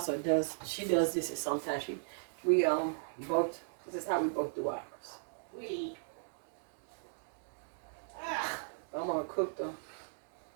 this at sometimes. We both. This is how we both do ours. I'm gonna cook them.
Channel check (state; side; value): silent; left; digital silence